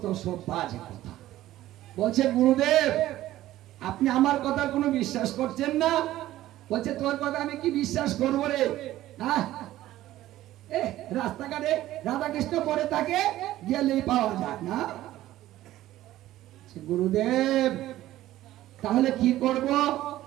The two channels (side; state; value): left; quieter; 14.7 dB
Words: সব বাজে কথা। বলছে গুরুদেব আপনি আমার কথা কোনো বিশ্বাস করছেন না? বলছে তোর কথা আমি কি বিশ্বাস করবো রে, হ্যাঁ, রাস্তাঘাটে রাধা কৃষ্ণ পরে তাকে গেলেই পাওয়া যায় না। গুরুদেব তাহলে কি করব,